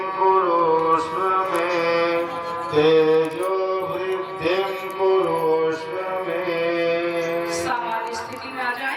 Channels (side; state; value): both; identical; correlation 1.00